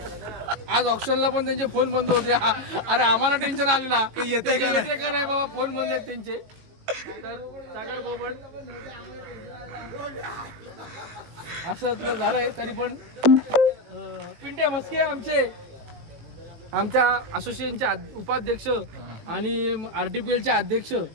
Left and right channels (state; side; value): late; left; 18 ms